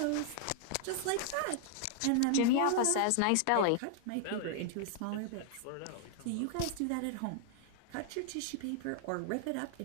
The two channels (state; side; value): different; both; correlation 0.00